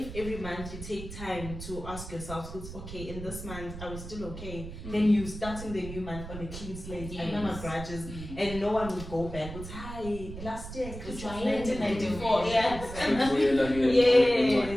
every month you take time to ask yourself, okay, in this month I was still okay, then you starting the new month on a clean slate, I know my grudges, and no one would go back with, hi, last year Christmas 1994. Yes.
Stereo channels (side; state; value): right; noise; rumble, 10 dB below the sound